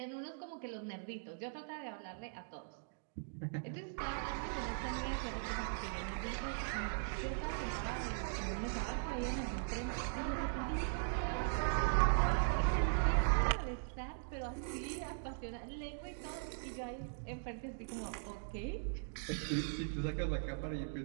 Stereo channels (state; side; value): silent; left; digital silence